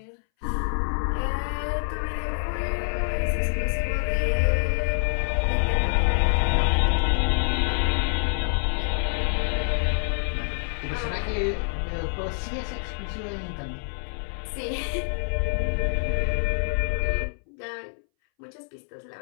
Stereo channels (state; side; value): silent; right; 61 dB below the other